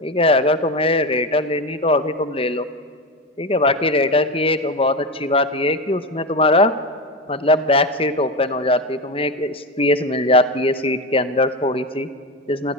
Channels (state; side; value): normal; both; correlation 0.18